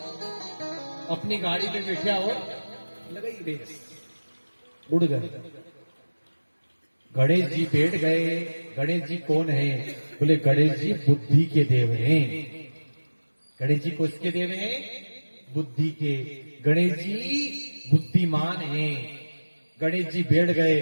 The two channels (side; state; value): both; inverted; correlation -1.00